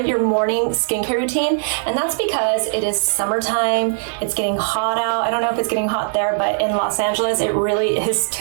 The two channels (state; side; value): silent; left; digital silence